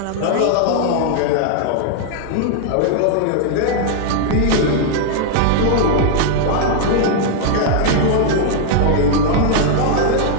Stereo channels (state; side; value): different; both; correlation 0.00